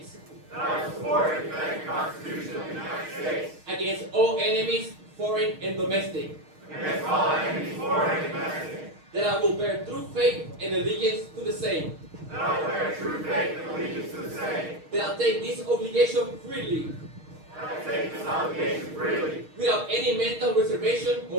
that I will support and defend the Constitution of the United States against all enemies, foreign and domestic, against all enemies, foreign and domestic, that I will bear true faith and allegiance to the same, that I will bear true faith and allegiance to the same, that I'll take this obligation freely, that I take this obligation freely, without any mental reservation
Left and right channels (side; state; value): left; late; 6.4 ms